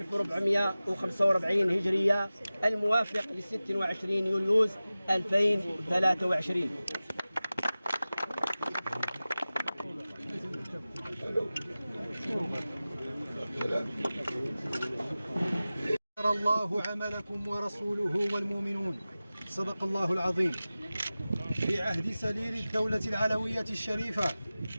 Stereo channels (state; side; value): inverted; both; correlation -0.97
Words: هجرية الموافق ل 26 يوليوز 2023. الله عملكم ورسوله والمؤمنون. صدق الله العظيم. في عهد سليل الدولة العلوية الشريفة